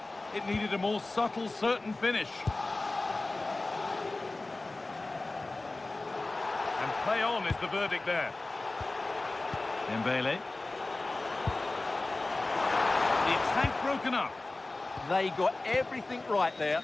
It needed a more subtle, certain finish. And play on is the verdict there. Dembele. The attack broken up. They got everything right there.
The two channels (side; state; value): right; quieter; 3.1 dB